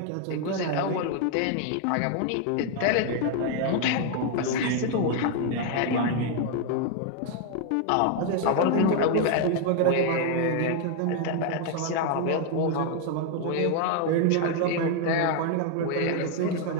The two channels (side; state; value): both; different; correlation 0.00